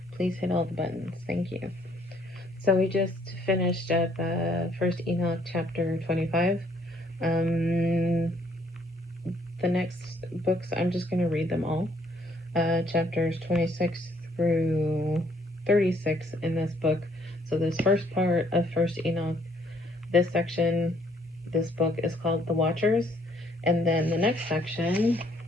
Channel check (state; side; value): normal; both; correlation 0.66